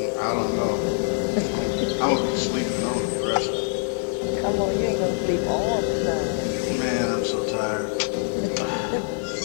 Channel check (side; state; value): right; silent; 60 dB below the other